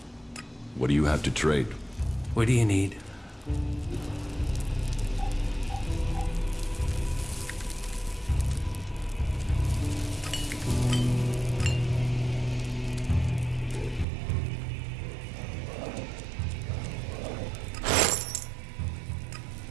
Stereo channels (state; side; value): drops out; left; at 14.1 s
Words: What do you have to trade? What do you need?